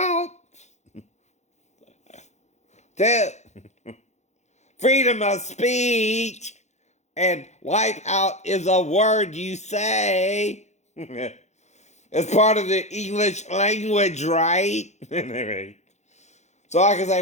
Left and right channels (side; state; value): right; late; 0.33 ms